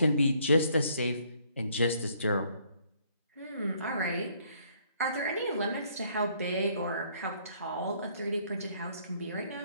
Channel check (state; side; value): inverted; both; correlation -0.65